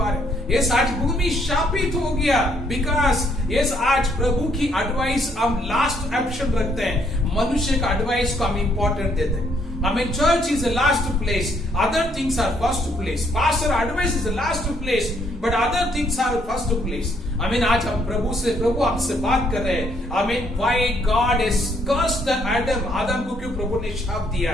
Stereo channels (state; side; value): normal; both; correlation 0.69